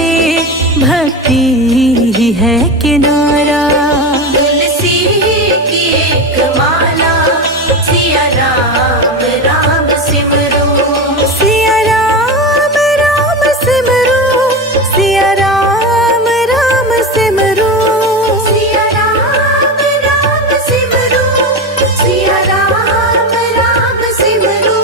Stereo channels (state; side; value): normal; both; correlation 0.20